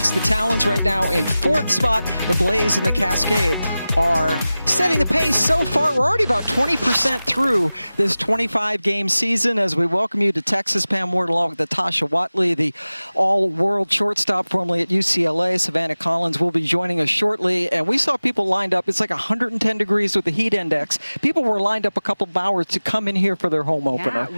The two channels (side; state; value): both; inverted; correlation -0.97